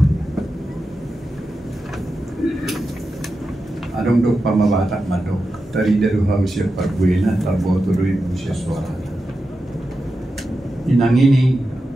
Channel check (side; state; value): both; normal; correlation 0.90